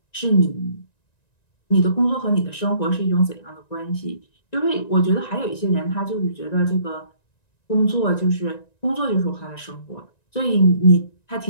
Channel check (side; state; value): right; late; 1.9 ms